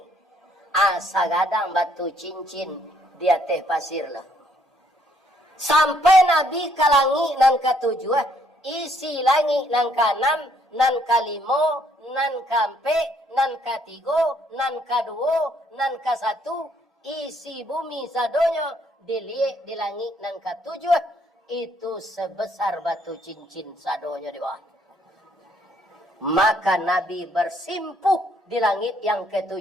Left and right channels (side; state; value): both; normal; correlation 0.67